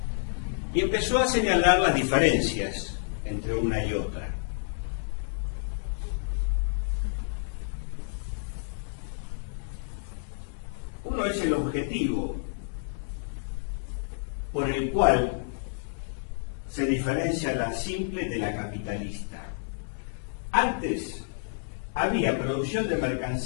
Y empezó a señalar las diferencias entre una y otra. Uno es el objetivo por el cual se diferencia la simple de la capitalista. Antes había producción de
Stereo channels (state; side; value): silent; right; 58 dB below the other